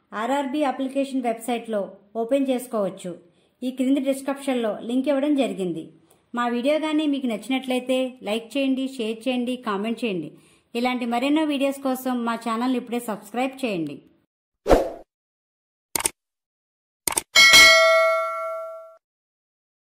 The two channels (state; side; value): identical; both; correlation 1.00